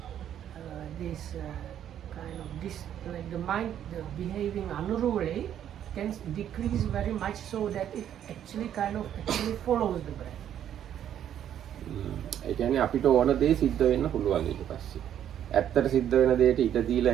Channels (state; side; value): quieter; left; 10.2 dB